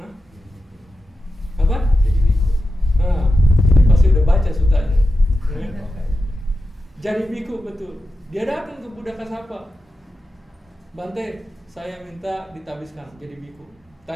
Apa? Nah, ini pasti udah baca sutanya. Ya. Jadi biku, betul. Dia datang ke Buddha Kasapa, Bante, saya minta ditabiskan jadi biku.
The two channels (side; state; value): both; normal; correlation 0.91